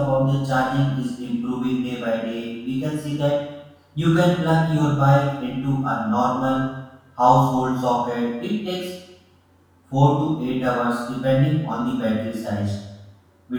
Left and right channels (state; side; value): identical; both; correlation 1.00